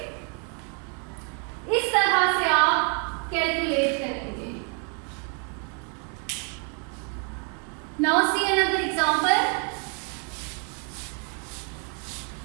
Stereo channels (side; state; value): left; quieter; 39.7 dB